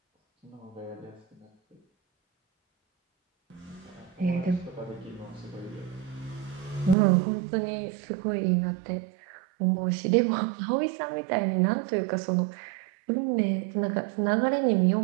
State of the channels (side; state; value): left; drops out; at 7.0 s